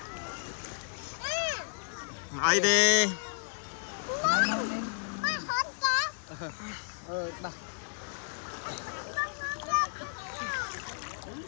Ai đi. Đặt.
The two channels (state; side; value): silent; right; digital silence